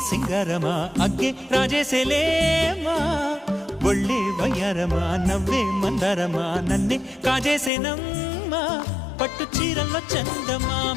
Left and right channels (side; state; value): right; drops out; at 7.7 s